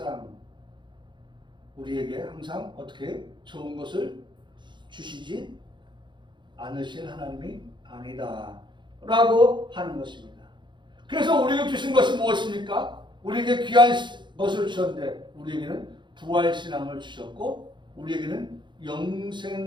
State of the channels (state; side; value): late; left; 0.23 ms